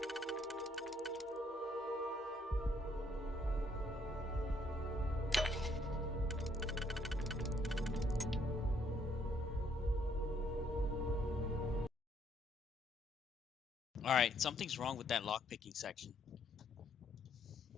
Alright, something's wrong with that lockpicking section.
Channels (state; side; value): normal; both; correlation 0.68